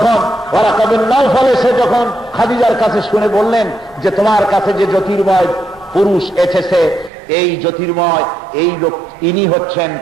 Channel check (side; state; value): left; drops out; at 7.1 s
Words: ওয়ারাকা বিন নাওফাল এসে যখন খাদিজার কাছে শুনে বললেন যে তোমার কাছে যে জ্যোতির্ময় পুরুষ এসেছে, এই জ্যোতির্ময় এই লোক, ইনি হচ্ছেন,